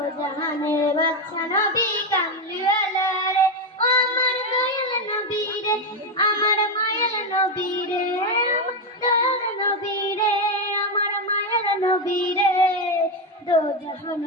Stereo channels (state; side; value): normal; both; correlation 0.08